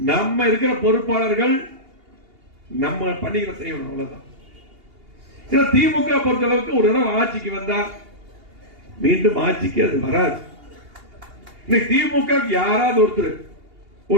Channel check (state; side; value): late; left; 2.8 ms